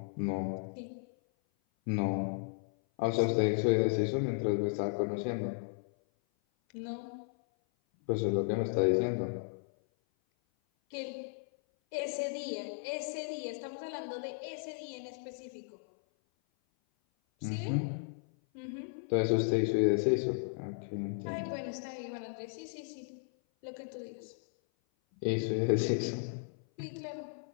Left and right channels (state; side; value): silent; right; 55 dB below the other